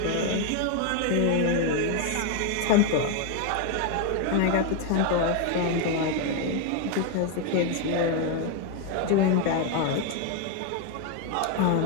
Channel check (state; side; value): different; both; correlation 0.01